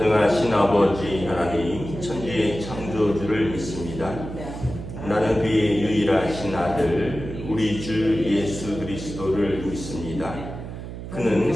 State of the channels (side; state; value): right; noise; hum, 9 dB below the sound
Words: 아버지 하나님 천지의 창조주를 믿습니다. 나는 그의 유일하신 아들 우리 주 예수 그리스도를 믿습니다. 그는